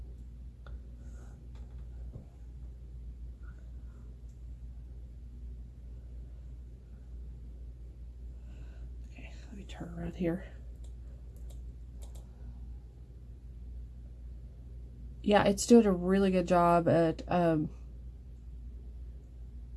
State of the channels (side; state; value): both; identical; correlation 1.00